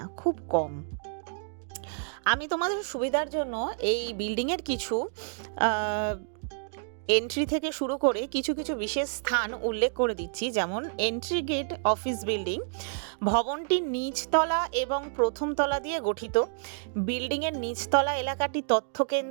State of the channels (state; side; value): silent; left; digital silence